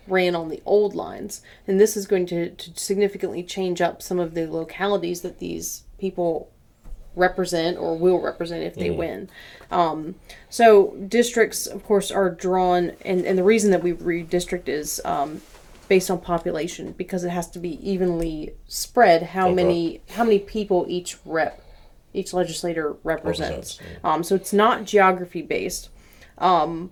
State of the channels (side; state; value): both; identical; correlation 1.00